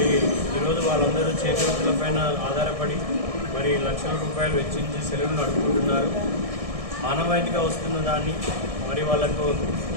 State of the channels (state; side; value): late; left; 1.6 ms